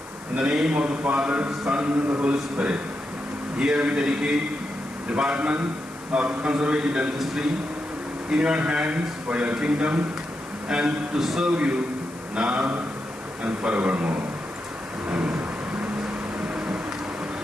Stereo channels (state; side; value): noise; left; hiss, 20 dB below the sound